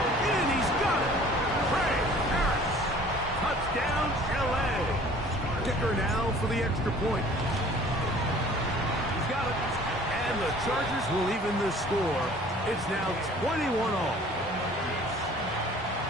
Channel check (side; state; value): both; normal; correlation 0.50